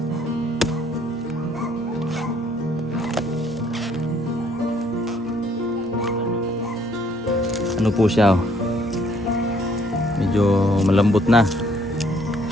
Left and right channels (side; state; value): both; normal; correlation 0.64